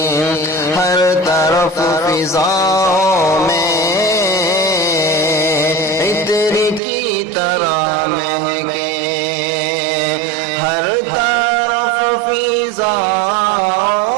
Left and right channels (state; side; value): drops out; left; at 6.8 s